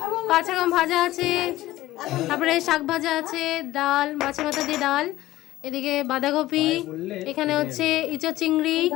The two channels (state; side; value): quieter; right; 16.1 dB